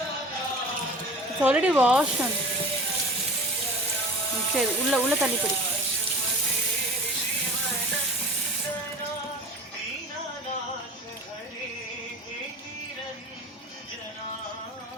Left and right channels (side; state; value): both; normal; correlation 0.39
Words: It's already wash. சரி, உள்ள தண்ணி படி.